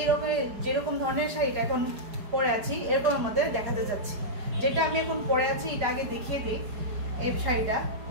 যেরকম ধরনের শাড়িটা এখন পরে আছি এরকম আমাদের দেখাতে যাচ্ছি। যেটা আমি এখন পরে আছি এটা আগে দেখিয়ে দিই। এই শাড়িটা,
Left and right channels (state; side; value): late; left; 4.9 ms